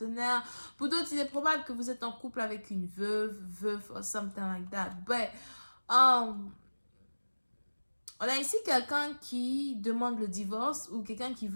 Pour d'autres, il est probable que vous êtes en couple avec une veuve or something like that. But, on a ici quelqu'un qui demande le divorce ou quelqu'un qui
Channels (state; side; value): inverted; both; correlation -1.00